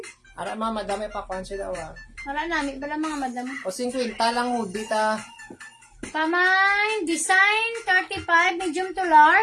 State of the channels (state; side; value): identical; both; correlation 1.00